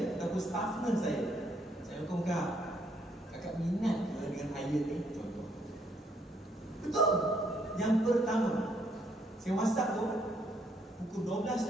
ataupun staff nurse saya. Saya hukum kakak minat ke dengan iron ni? Contoh. Betul. Yang pertama, saya WhatsApp tu pukul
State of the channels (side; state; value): both; normal; correlation 0.70